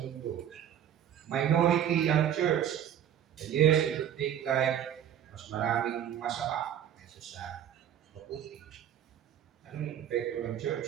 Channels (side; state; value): left; quieter; 9.9 dB